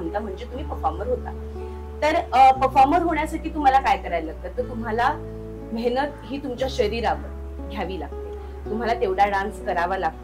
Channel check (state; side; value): identical; both; correlation 1.00